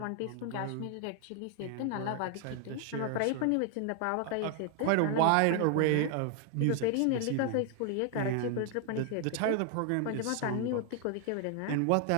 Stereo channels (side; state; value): both; different; correlation 0.00